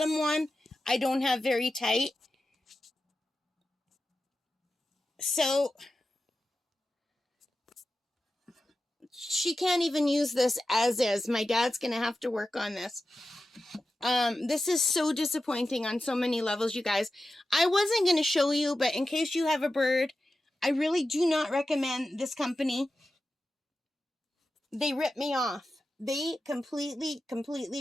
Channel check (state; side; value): normal; both; correlation 0.93